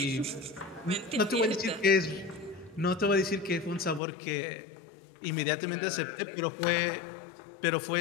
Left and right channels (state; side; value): drops out; right; at 4.0 s